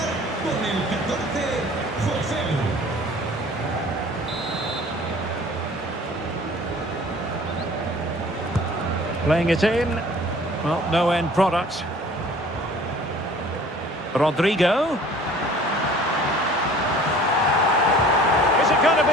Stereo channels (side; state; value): both; normal; correlation 0.49